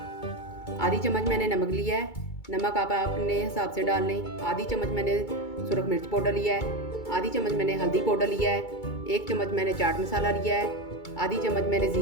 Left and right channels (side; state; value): right; late; 2.3 ms